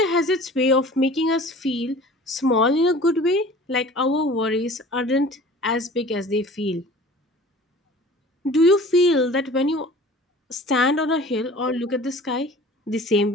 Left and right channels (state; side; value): normal; both; correlation 0.44